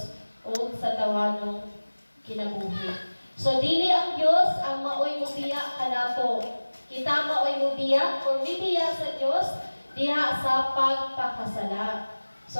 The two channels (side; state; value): both; inverted; correlation -1.00